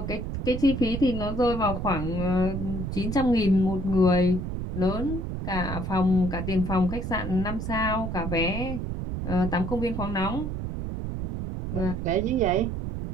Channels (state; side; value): noise; right; rumble, 4 dB below the sound